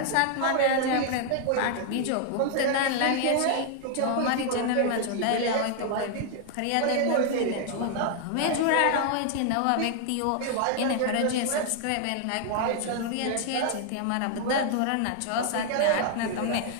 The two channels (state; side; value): different; both; correlation 0.00